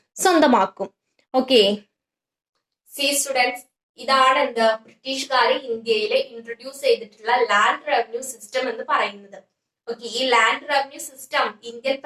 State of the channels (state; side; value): identical; both; correlation 1.00